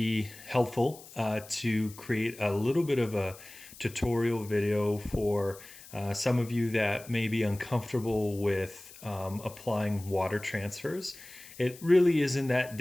helpful to create a little bit of a tutorial video for some of you that may be uncomfortable with applying water transfers. It really isn't that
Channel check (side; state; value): left; noise; hiss, 19 dB below the sound